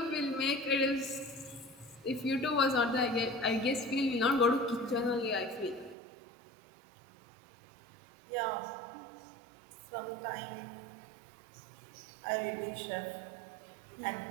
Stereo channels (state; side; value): drops out; left; at 6.0 s